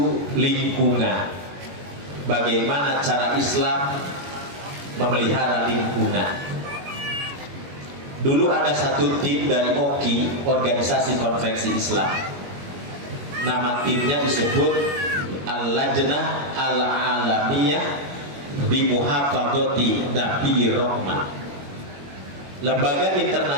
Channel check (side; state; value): left; late; 21 ms